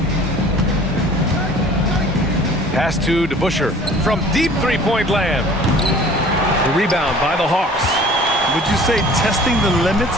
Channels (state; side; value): normal; both; correlation 0.48